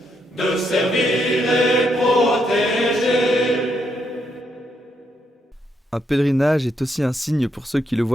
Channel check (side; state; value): both; normal; correlation 0.78